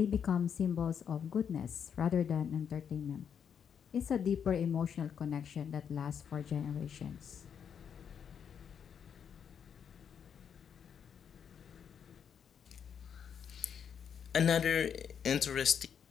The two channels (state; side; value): quieter; right; 7.7 dB